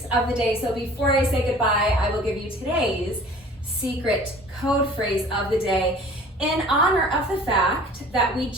of the day. So before I say goodbye, I will give you today's secret code phrase of the day. In honor of the fact that we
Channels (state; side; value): normal; both; correlation 0.47